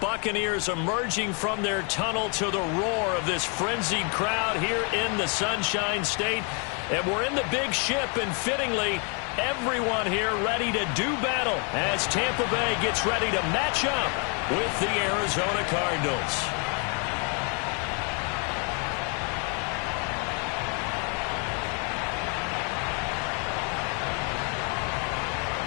Buccaneers emerging from their tunnel to the roar of this frenzied crowd here in the Sunshine State. And we're in the big ship, and fittingly, everyone here ready to do battle as Tampa Bay gets ready to match up with the Arizona Cardinals.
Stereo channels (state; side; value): quieter; right; 36.7 dB